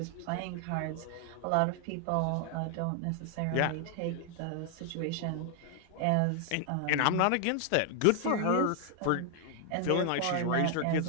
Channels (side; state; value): both; different; correlation 0.00